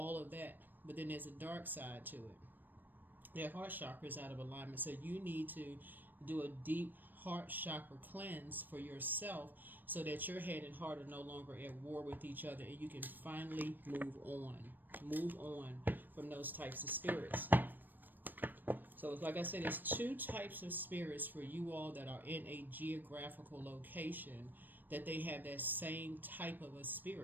of that. But then there's a dark side to it. Their heart chakra is out of alignment, so you need to do a deep heart chakra cleanse for yourself so that your head and heart are no longer at war with each other, and you can finally move on from those types of spirits. So like I said, there's two types of spirits for you all that are in a geographical location that they have that same type of a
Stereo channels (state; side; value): late; left; 0.091 ms